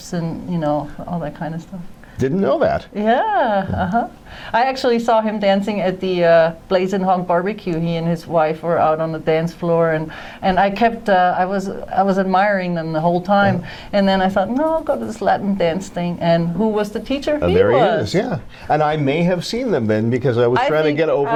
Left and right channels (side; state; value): both; identical; correlation 1.00